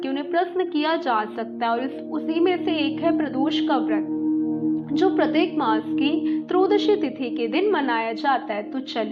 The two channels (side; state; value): both; identical; correlation 1.00